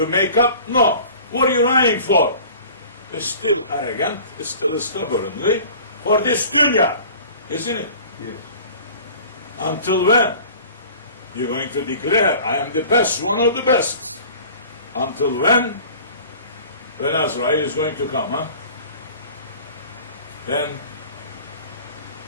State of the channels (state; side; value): inverted; both; correlation -0.44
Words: make up? No. What are you running for? It's still arrogant, it's still stubbornly for this dunya, isn't it? Yes. Until when? You're going to declare, I am the best, one of the best. Until when? When Azrael is going to come, huh? Then